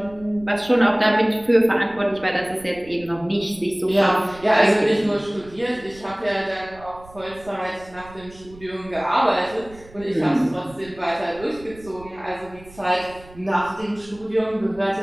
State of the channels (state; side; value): noise; right; rumble, 21 dB below the sound